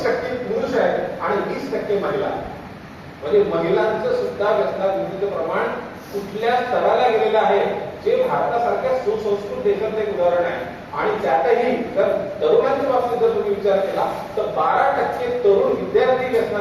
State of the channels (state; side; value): identical; both; correlation 1.00